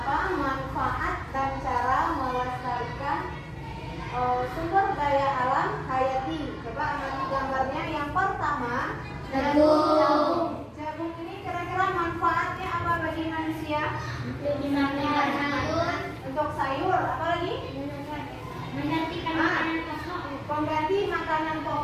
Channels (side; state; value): both; identical; correlation 1.00